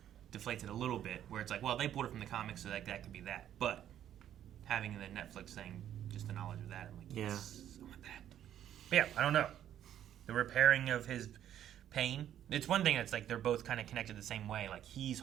deflates it a little bit, where it's like, well, they pulled it from the comics, so, like, that could be that. But having the Netflix thing, just the knowledge of that, I'm like, yes, I want that. But, yeah, I don't know. The repairing of his pain. It's one thing that's, like, they're both kind of connected the same way. Like, he's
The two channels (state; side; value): quieter; left; 10.8 dB